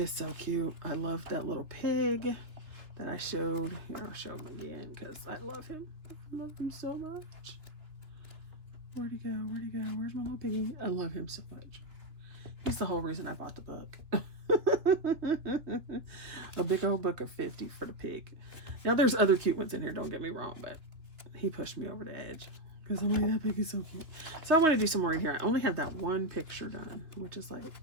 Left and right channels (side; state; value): left; late; 2.8 ms